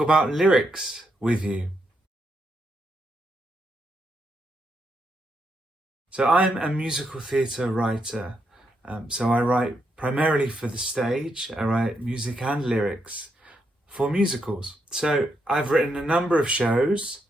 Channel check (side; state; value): both; normal; correlation 0.80